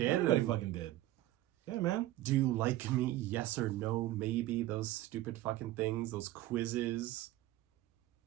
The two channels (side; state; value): left; quieter; 15.4 dB